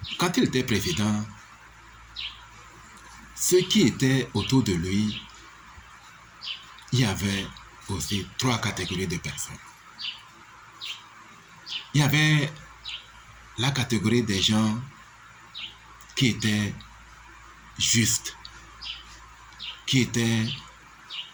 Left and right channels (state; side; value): identical; both; correlation 1.00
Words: quand il était président, ceux qui étaient autour de lui, il y avait aussi 3 catégories de personnes. Il y avait la catégorie des gens qui étaient justes, qui étaient